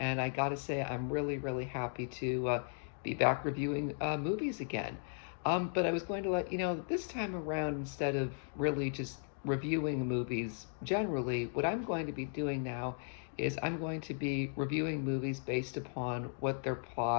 I gotta say, I'm really happy to be back reviewing movies again. But I was going to let you know that this time around, instead of really just reviewing movies generally, what I'm going to be doing now is I'm going to be reviewing movies based upon what their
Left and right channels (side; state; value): right; silent; digital silence